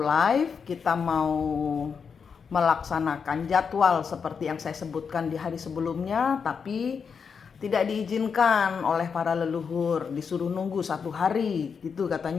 live, kita mau melaksanakan jadwal seperti yang saya sebutkan di hari sebelumnya, tapi tidak diizinkan oleh para leluhur, disuruh nunggu 1 hari gitu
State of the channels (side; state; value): right; quieter; 6.1 dB